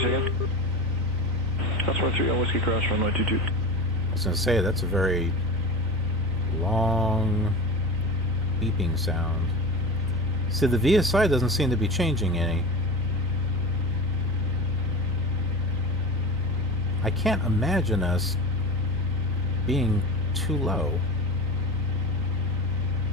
second. Crossroad 3 on Whiskey Cross, runway 22. I was going to say, that's a very long beeping sound. See, the VSI doesn't seem to be changing any. I can't imagine us being too low.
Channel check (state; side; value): normal; both; correlation 0.29